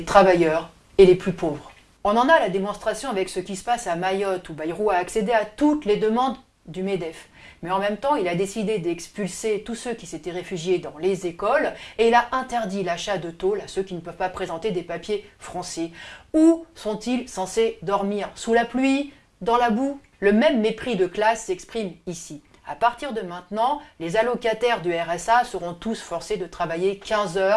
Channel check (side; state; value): both; identical; correlation 1.00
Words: travailleurs et les plus pauvres. On en a la démonstration avec ce qui se passe à Mayotte, où Bayrou a accédé à toutes les demandes du MEDEF. Mais en même temps, il a décidé d'expulser tous ceux qui s'étaient réfugiés dans les écoles et il a interdit l'achat de tôles à ceux qui ne peuvent pas présenter des papiers français. Où sont-ils censés dormir? Sous la pluie? Dans la boue? Le même mépris de classe s'exprime ici. À partir de maintenant, les allocataires du RSA seront tous forcés de travailler 15